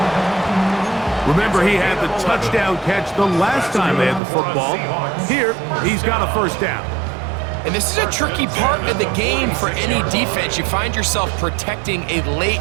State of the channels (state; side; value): drops out; left; at 4.2 s